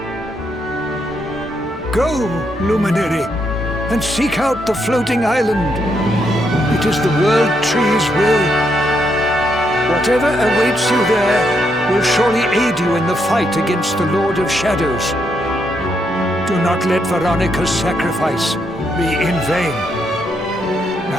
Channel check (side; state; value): both; normal; correlation 0.78